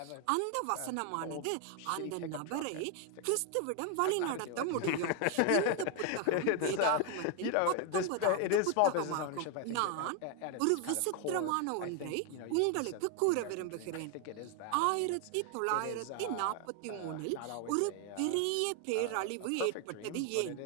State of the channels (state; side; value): different; both; correlation 0.01